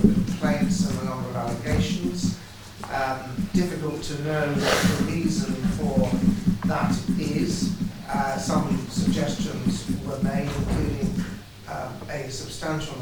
complaints and the number of allegations. Difficult to know what the reason for that is. Some suggestions were made, including a substantial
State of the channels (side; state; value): both; identical; correlation 1.00